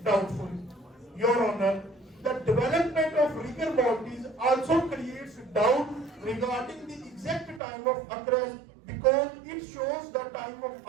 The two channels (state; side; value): drops out; left; at 7.6 s